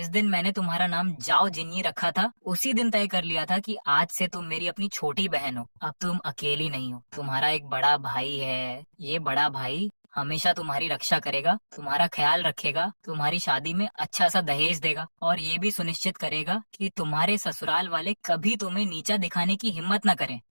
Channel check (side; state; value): both; inverted; correlation -1.00